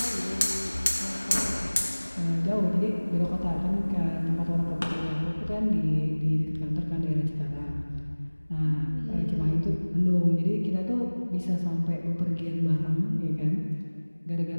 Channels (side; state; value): both; inverted; correlation -1.00